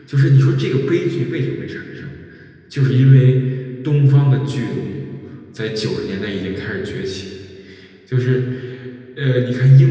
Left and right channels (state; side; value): identical; both; correlation 1.00